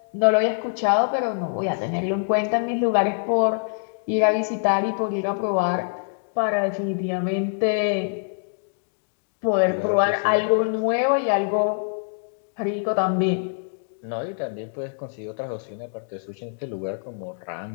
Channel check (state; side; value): silent; right; digital silence